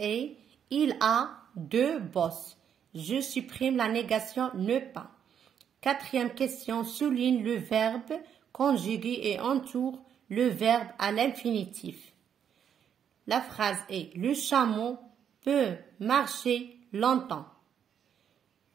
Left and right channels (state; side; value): quieter; left; 8.5 dB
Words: il a deux bosses. Je supprime la négation ne pas. Quatrième question, souligne le verbe conjugué et entoure le verbe à l'infinitif. La phrase est le chameau peut marcher longtemps.